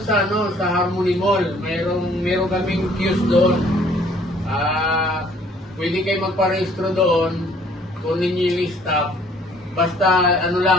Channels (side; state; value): both; normal; correlation 0.58